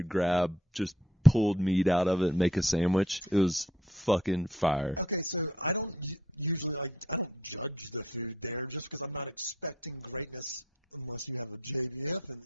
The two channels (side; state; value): both; normal; correlation 0.63